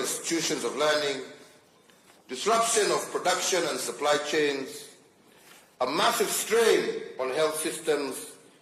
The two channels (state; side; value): identical; both; correlation 1.00